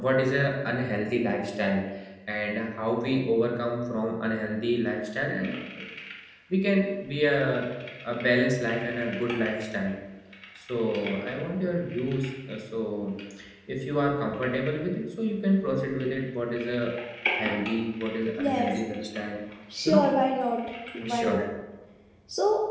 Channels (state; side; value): identical; both; correlation 1.00